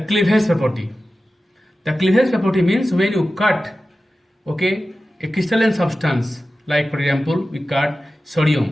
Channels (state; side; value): normal; both; correlation 0.94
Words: cleavage property. The cleavage property means when you cut, okay, a crystalline substance, like for example, we cut